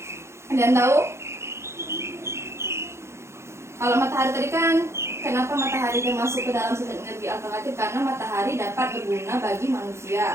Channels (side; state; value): left; late; 0.13 ms